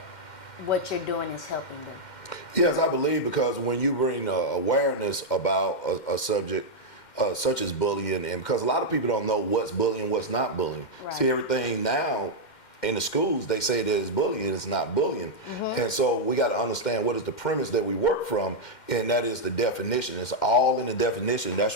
what you're doing is helping them? Yes, I believe, because when you bring awareness about a subject such as bullying, and because a lot of people don't know what's bullying, what's not bullying. Right. See, everything now in the schools, they say that it's bullying, it's not bullying. And so we got to understand what is the premise that we work from, and that is the definition. It's all in the definition. That's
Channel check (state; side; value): late; right; 2.1 ms